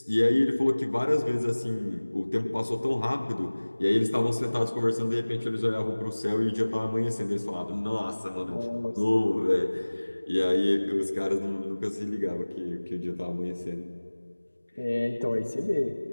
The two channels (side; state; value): both; inverted; correlation -1.00